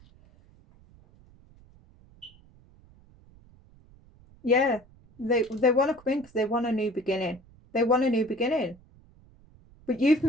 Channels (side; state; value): right; noise; rumble, 27 dB below the sound